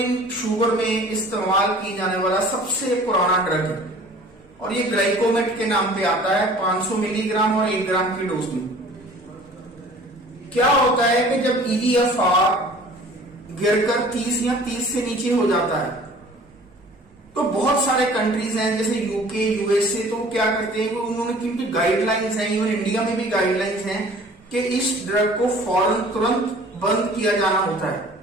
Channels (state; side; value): normal; both; correlation 0.48